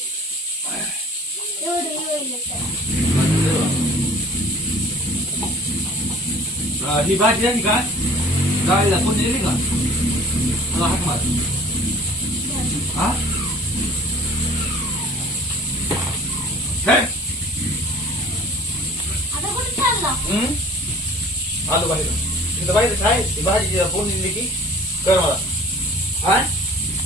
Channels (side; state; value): both; normal; correlation 0.48